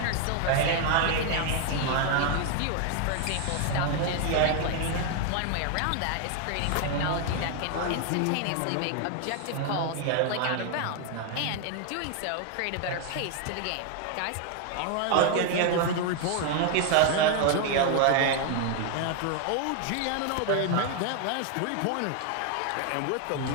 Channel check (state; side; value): different; both; correlation 0.00